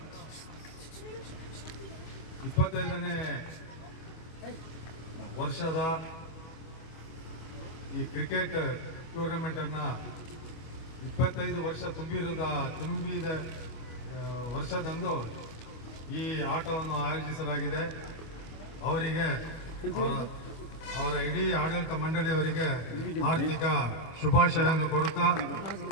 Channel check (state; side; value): late; right; 25 ms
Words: 25ನೇ ವರ್ಷದ ಈ ಕ್ರಿಕೆಟ್ ಟೂರ್ನಮೆಂಟ್ ಅನ್ನ 25 ವರ್ಷ ತುಂಬಿದ ವರ್ಷದಂದು ಈ ಆಟವನ್ನು ಆಯೋಜಿಸಲಾಗಿದೆ. ಅವರಿಗೆ ಅವರ ಇಡೀ ಆಡಳಿತ ಮಂಡಳಿಯವರಿಗೆ ಹಾರ್ದಿಕ ಶುಭಾಶಯವನ್ನು ಕೊಡುತ್ತಾ